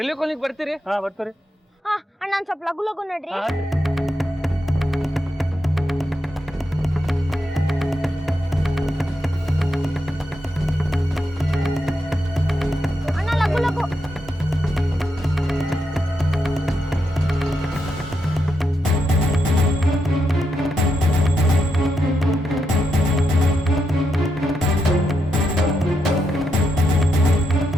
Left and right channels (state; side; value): normal; both; correlation 0.83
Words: ಕಾಲೋನಿಗೆ ಬರ್ತೀರಿ? ಹಾ ಬರ್ತೀರಿ. ಅಣ್ಣ ನಾನು ಸ್ವಲ್ಪ ಲಗು ಲಗು ನೋಡ್ರಿ. ಅಣ್ಣ ಲಗು ಲಗು.